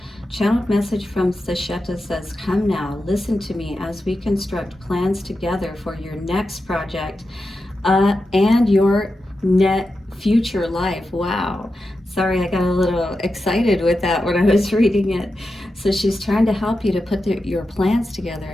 Channeled message from Sesheta says, come now, listen to me as we construct plans together for your next project and your future life. Wow. Sorry, I got a little excited with that when I was reading it. So she's trying to help you to put your plans together.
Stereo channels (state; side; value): normal; both; correlation 0.90